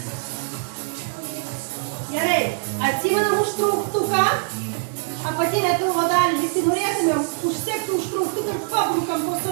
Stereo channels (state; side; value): silent; left; digital silence